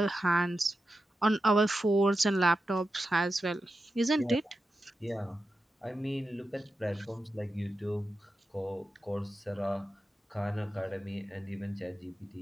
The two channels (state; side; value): normal; both; correlation 0.91